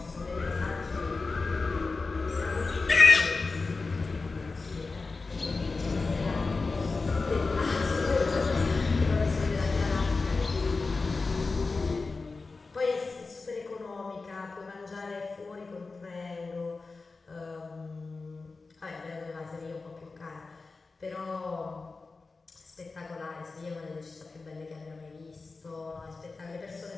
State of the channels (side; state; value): right; quieter; 4.0 dB